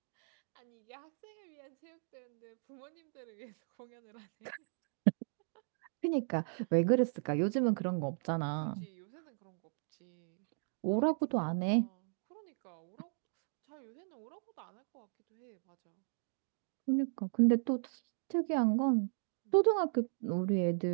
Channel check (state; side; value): silent; left; digital silence